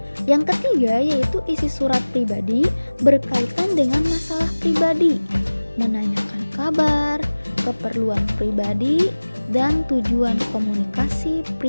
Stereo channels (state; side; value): inverted; both; correlation -1.00